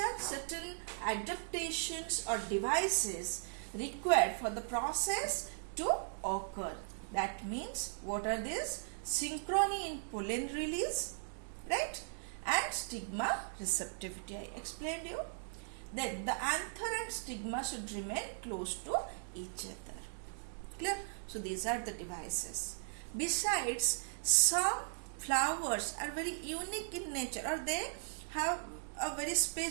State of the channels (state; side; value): silent; left; digital silence